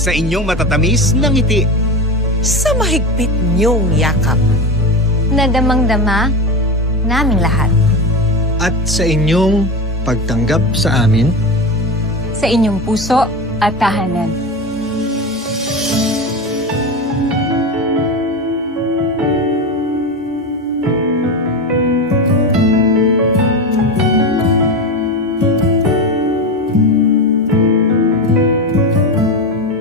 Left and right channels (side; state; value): both; normal; correlation 0.21